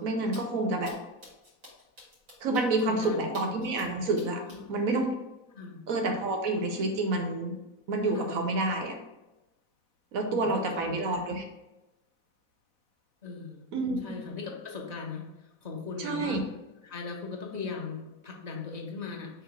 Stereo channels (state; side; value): late; left; 4.1 ms